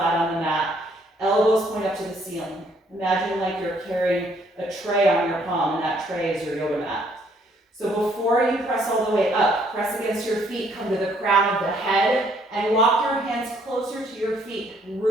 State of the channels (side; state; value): both; normal; correlation 0.66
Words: on the mat. Elbows point up to the ceiling. Imagine like you're carrying a tray on your palm, and that tray is your yoga mat. So before you press all the way up, press against your feet, come to the crown of the head, and walk your hands closer to your feet.